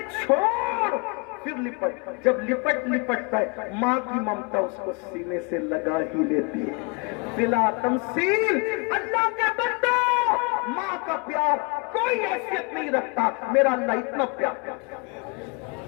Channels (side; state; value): right; quieter; 31.6 dB